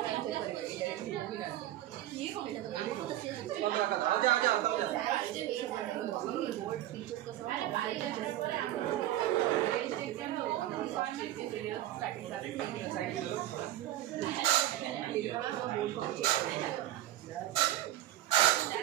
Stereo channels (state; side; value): quieter; left; 13.9 dB